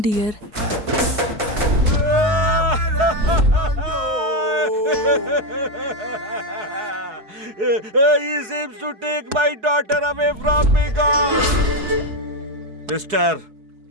He seems to take my daughter away from me, God. Mister,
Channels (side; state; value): left; late; 4.7 ms